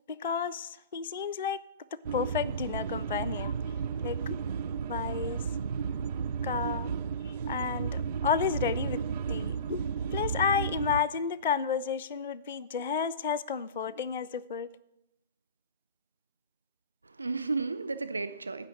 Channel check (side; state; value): both; inverted; correlation -0.37